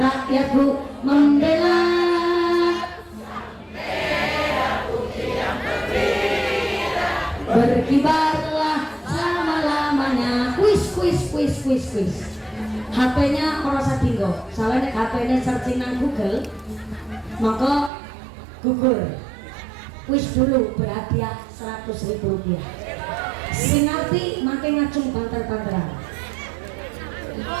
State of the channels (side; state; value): left; drops out; at 17.9 s